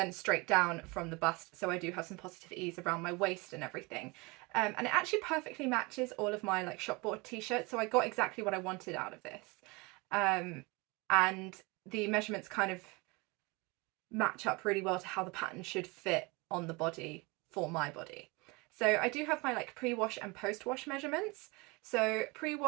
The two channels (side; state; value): left; quieter; 26.3 dB